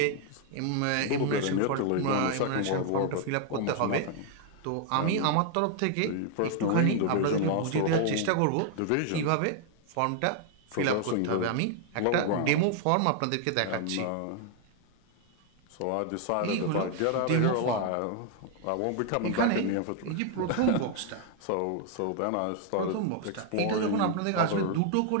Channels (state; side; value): different; both; correlation 0.00